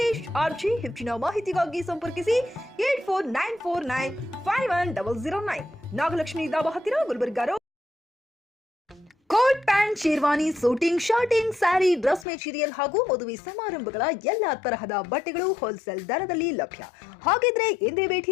ಆರ್ಜಿ. ಹೆಚ್ಚಿನ ಮಾಹಿತಿಗಾಗಿ ಸಂಪರ್ಕಿಸಿ 8494951009 ನಾಗಲಕ್ಷ್ಮಿ ದಾಬಾ ಹತ್ತಿರ Gulbarga. Coat pant, sherwani, suiting, shirting, sari, dress material ಹಾಗೂ ಮದುವೆ ಸಮಾರಂಭಗಳ ಎಲ್ಲಾ ತರಹದ ಬಟ್ಟೆಗಳು ಹೋಲ್ಸೇಲ್ ದರದಲ್ಲಿ ಲಭ್ಯ. ಹಾಗಿದ್ರೆ ಎಂದೇ ಭೇಟಿ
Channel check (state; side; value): drops out; right; at 12.2 s